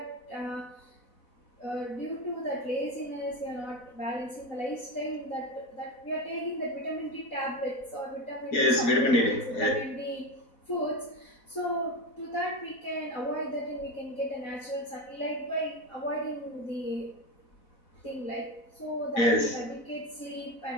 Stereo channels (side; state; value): right; late; 4.0 ms